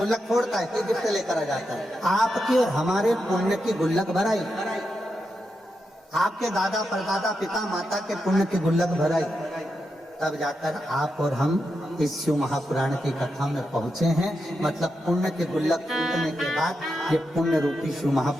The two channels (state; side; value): normal; both; correlation 0.86